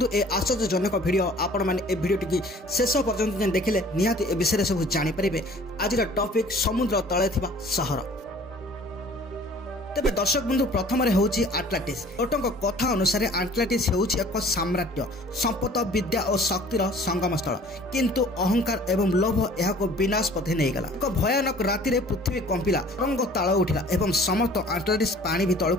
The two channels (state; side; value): normal; both; correlation 0.50